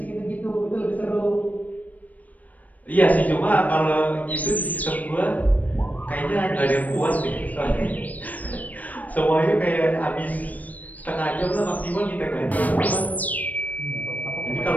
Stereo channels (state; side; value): late; right; 0.076 ms